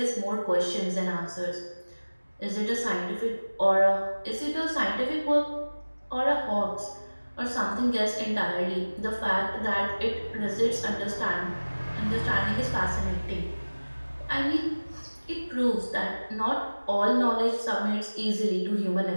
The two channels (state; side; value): inverted; both; correlation -1.00